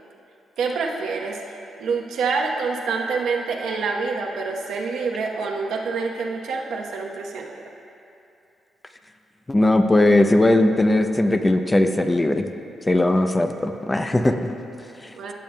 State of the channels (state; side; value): normal; both; correlation 0.90